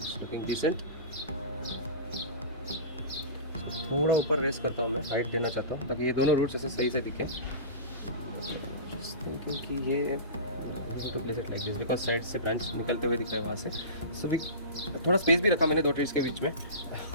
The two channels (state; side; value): inverted; both; correlation -0.31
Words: looking decent. थोड़ा ऊपर रेस करता हूँ मैं, हाइट देना चाहता हूँ ताकि ये दोनों रूट्स ऐसे सही से दिखे। जस्ट थिंकिंग कि ये to place it like this because side से ब्रांच निकलते हुए दिख रहा है वहाँ से। सो थोड़ा स्पेस भी रखा मैंने 2 ट्रीज के बीच में